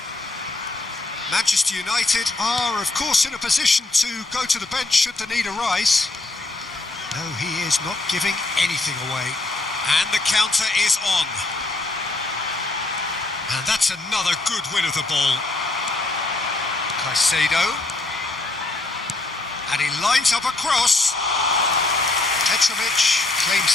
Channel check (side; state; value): right; quieter; 3.0 dB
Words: Manchester United are, of course, in a position to go to the bench should the need arise. No, he is not giving anything away. And the counter is on. And that's another good win of the ball. Caicedo. And he lines up a cross. Petrovic